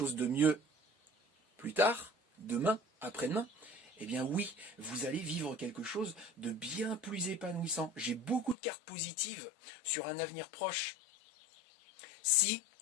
de mieux plus tard, demain, après-demain, eh bien oui, vous allez vivre quelque chose de bien plus épanouissant. J'ai beaucoup de cartes positives sur un avenir proche. Si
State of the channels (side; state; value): right; drops out; at 8.6 s